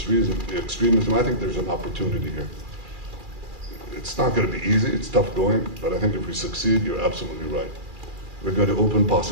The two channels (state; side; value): late; left; 2.4 ms